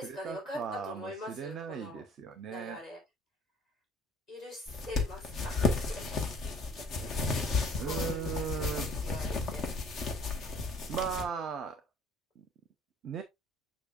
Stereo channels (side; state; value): both; normal; correlation 0.53